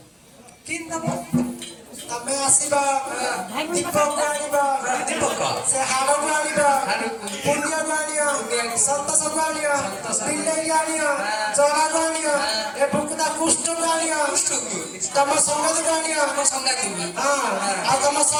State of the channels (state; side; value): identical; both; correlation 1.00